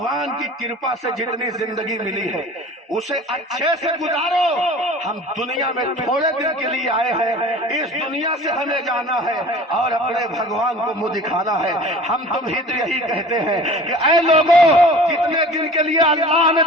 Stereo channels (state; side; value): normal; both; correlation 0.42